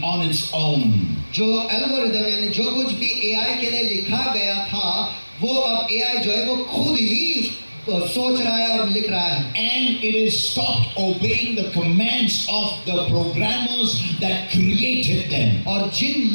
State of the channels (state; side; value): inverted; both; correlation -1.00